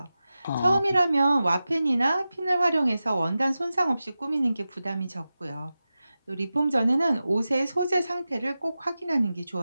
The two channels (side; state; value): both; inverted; correlation -0.94